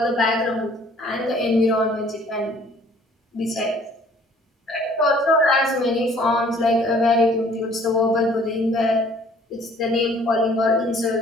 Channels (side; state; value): both; normal; correlation 0.56